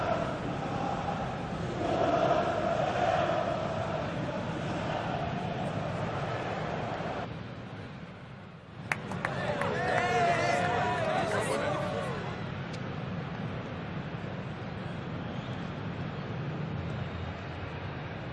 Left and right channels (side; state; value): both; identical; correlation 1.00